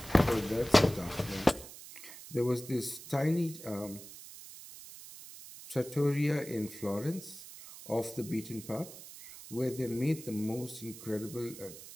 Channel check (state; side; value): noise; right; hiss, 15 dB below the sound